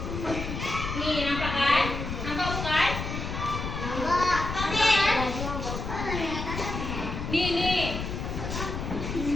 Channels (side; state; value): left; noise; rumble, 5 dB below the sound